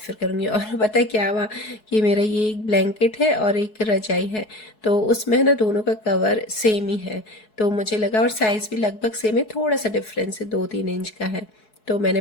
करूँगी। और पता है क्या हुआ कि मेरा ये एक ब्लैंकेट है और एक रजाई है, तो उसमें ना दोनों का कवर सेम ही है। तो मुझे लगा, और साइज़ भी लगभग सेम है, थोड़ा सा डिफरेंस है, 2-3 इंच का है। तो मैंने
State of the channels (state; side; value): late; right; 4.7 ms